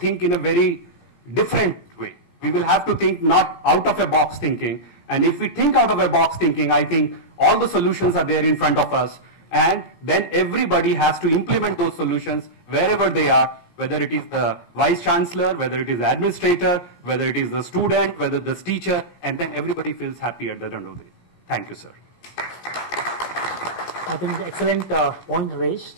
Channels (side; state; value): right; late; 17 ms